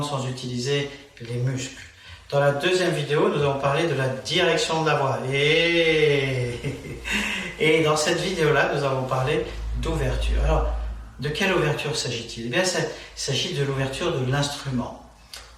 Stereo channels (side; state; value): both; identical; correlation 1.00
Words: sans utiliser les muscles. Dans la deuxième vidéo, nous avons parlé de la direction de la voix. Et dans cette vidéo-là, nous avons parlé d'ouverture. Alors, de quelle ouverture s'agit-il? Eh bien, il s'agit de l'ouverture de l'instrument.